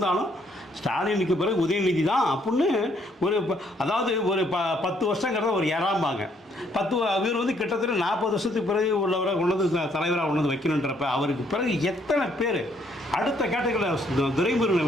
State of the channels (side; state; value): both; normal; correlation 0.68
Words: ஸ்டாலினுக்கு பிறகு உதயநிதி தான் அப்படின்னு அதாவது ஒரு 10 வருஷங்கிறத ஒரு ஏறாம்பாங்க. இவர் வந்து கிட்டத்தட்ட 40 வருஷத்துக்கு பிறகு உள்ளவரை கொண்டு தலைவராக கொண்டு வந்து வைக்கணுன்றப்ப அவருக்கு பிறகு எத்தனை பேர் அடுத்த கேட்டகரியில் துரைமுருகனை